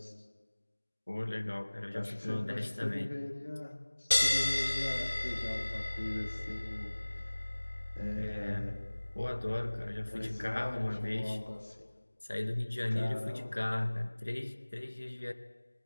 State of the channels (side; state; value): both; inverted; correlation -1.00